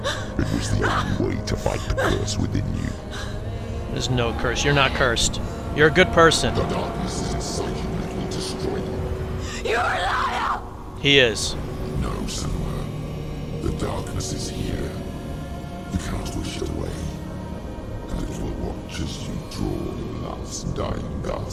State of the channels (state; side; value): identical; both; correlation 1.00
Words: It was the only way to fight the curse within you. There's no curse. You're not cursed. You're a good person. The darkness is inside you and it will destroy you. You're a liar! He is. No, Senua. The darkness is here. You cannot wish it away. And it will watch as you draw your last dying